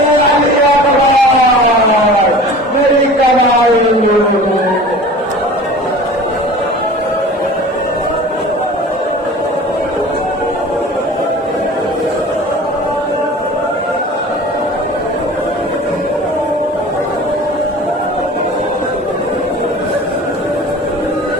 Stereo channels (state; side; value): normal; both; correlation 0.40